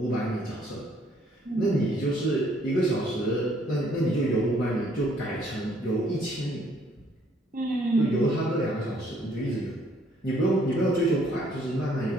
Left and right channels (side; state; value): both; normal; correlation 0.65